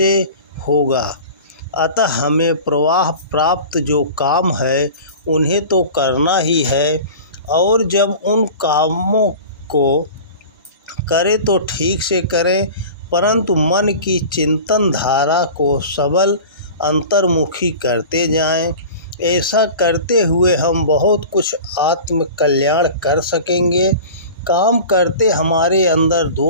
होगा। अतः हमें प्रवाह प्राप्त जो काम है उन्हें तो करना ही है और जब उन कामों को करें तो ठीक से करें, परंतु मन की चिंतन धारा को सबल अंतर्मुखी करते जाएं। ऐसा करते हुए हम बहुत कुछ आत्म कल्याण कर सकेंगे। काम करते हमारे अंदर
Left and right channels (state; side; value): inverted; both; correlation -0.37